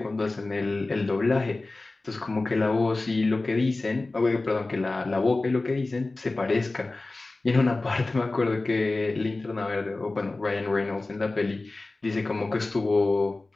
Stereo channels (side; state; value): right; quieter; 3.2 dB